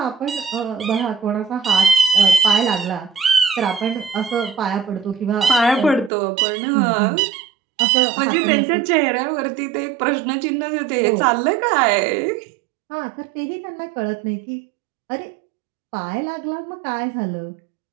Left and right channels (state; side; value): drops out; left; at 6.1 s